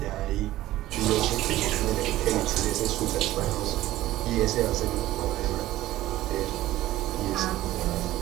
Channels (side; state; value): left; quieter; 15.5 dB